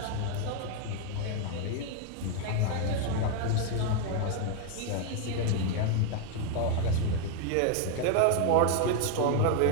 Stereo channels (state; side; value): different; both; correlation 0.01